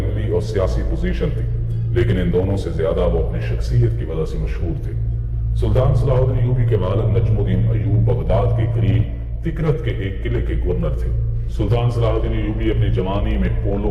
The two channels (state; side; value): identical; both; correlation 1.00